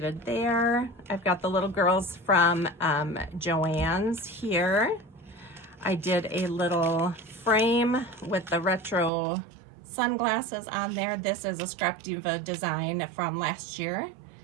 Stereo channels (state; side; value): drops out; left; at 9.1 s